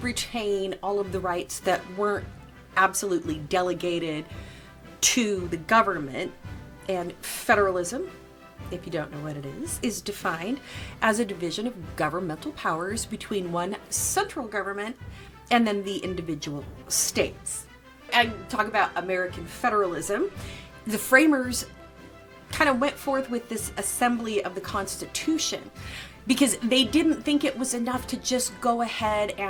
retain all of the rights that weren't absolutely delegated to the government. And federalism, if you don't know what it is defined as a division of governmental powers between one central government and then the individual states. And talk about American federalism. The framers kind of went forth with this assembly of the Constitution because they didn't think it was enough to just go ahead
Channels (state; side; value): identical; both; correlation 1.00